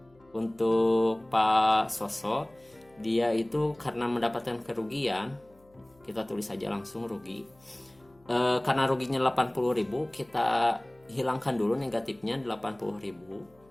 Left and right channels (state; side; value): noise; left; hum, 30 dB below the sound